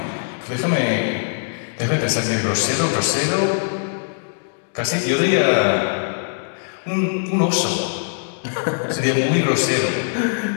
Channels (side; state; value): right; silent; digital silence